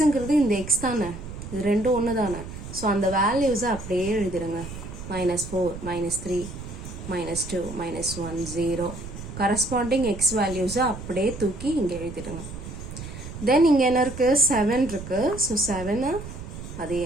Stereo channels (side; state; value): right; noise; rumble, 11 dB below the sound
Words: இந்த எக்ஸ் தானே, இது ரெண்டும் ஒன்று தானே. ஸோ அந்த வேல்யூஸை அப்படியே எழுதிடுங்க. -4, -3, -2, -1, 0. கரஸ்பாண்டிங் எக்ஸ் வேல்யூஸை அப்படியே தூக்கி இங்கே எழுதிடுங்க. தென் இங்கே என்ன இருக்கு? 7 இருக்கு. ஸோ 7 அதே